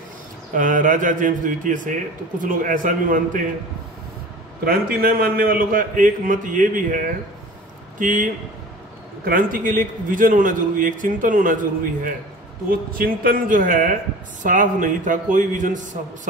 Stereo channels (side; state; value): both; normal; correlation 0.40